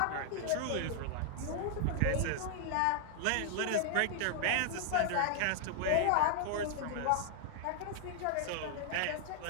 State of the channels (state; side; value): different; both; correlation 0.00